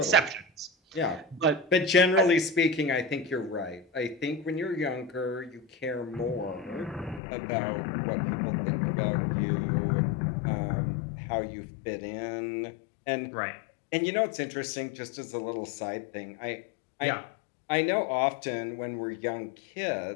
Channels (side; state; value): right; drops out; at 7.2 s